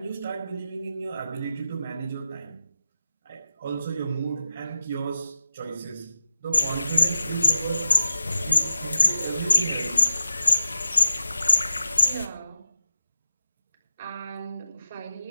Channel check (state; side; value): inverted; both; correlation -0.92